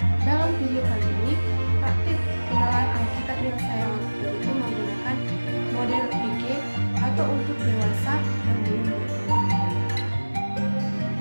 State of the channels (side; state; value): both; inverted; correlation -1.00